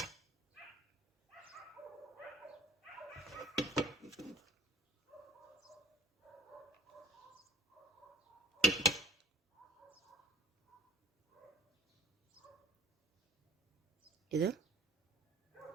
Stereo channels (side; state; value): both; normal; correlation 0.44